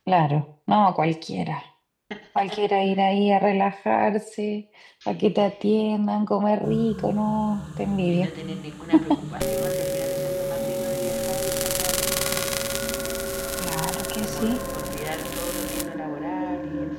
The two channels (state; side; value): identical; both; correlation 1.00